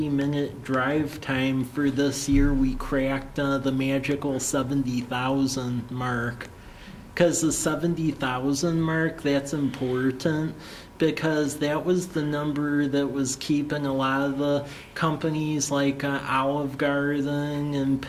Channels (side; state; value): both; identical; correlation 1.00